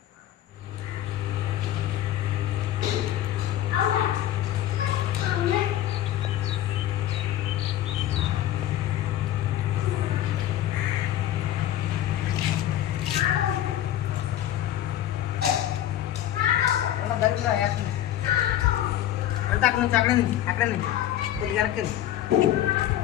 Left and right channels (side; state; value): right; quieter; 12.5 dB